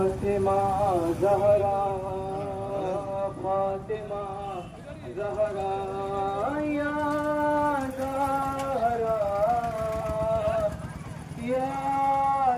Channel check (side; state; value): both; identical; correlation 1.00